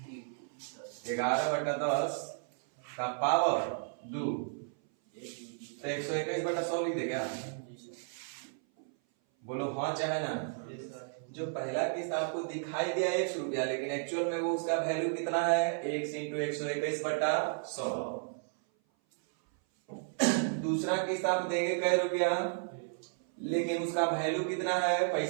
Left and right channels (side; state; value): left; silent; 56 dB below the other